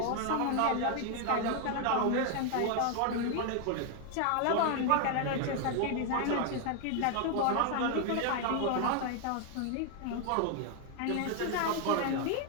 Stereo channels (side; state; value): both; different; correlation 0.01